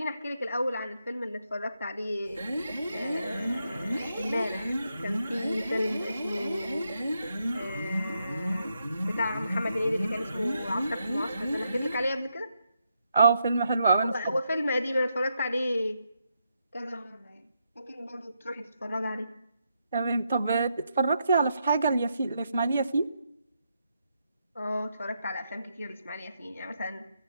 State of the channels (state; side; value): inverted; both; correlation -0.81